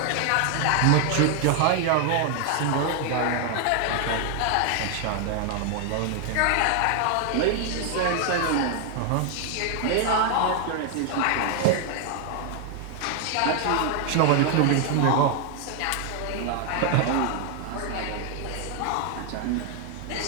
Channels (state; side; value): different; both; correlation 0.00